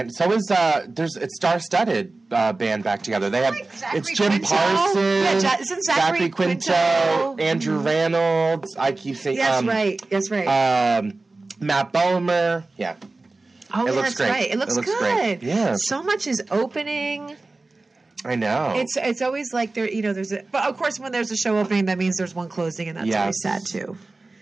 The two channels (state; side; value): quieter; left; 3.3 dB